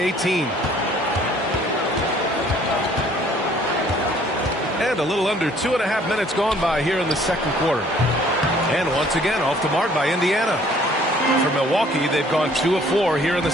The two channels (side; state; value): both; normal; correlation 0.58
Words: And a little under 2.5 minutes gone by here in the second quarter. And once again, off the mark by Indiana. For Milwaukee, they've gone 2 of 4 here in the